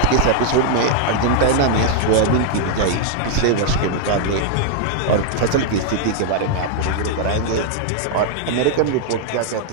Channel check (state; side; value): different; both; correlation -0.01